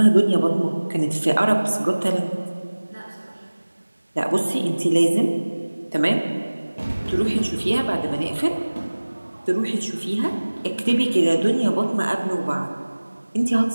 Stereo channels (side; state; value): both; inverted; correlation -1.00